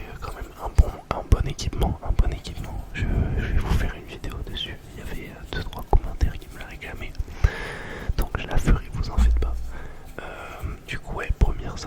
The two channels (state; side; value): identical; both; correlation 1.00